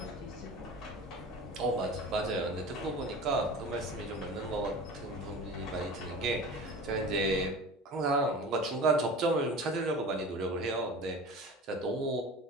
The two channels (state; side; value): normal; both; correlation 0.36